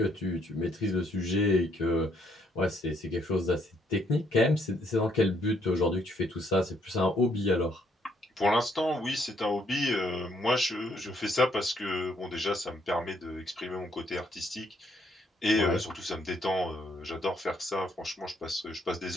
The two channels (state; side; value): normal; both; correlation 0.70